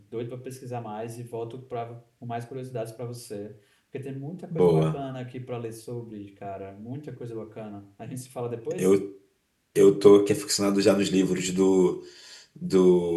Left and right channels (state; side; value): identical; both; correlation 1.00